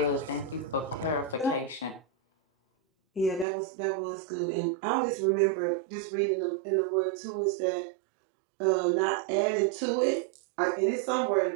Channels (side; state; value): left; drops out; at 3.5 s